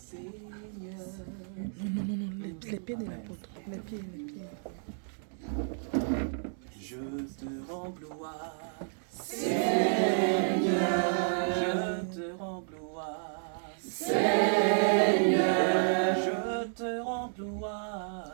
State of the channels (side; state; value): left; silent; digital silence